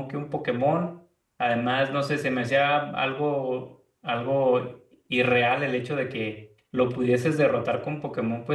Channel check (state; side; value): identical; both; correlation 1.00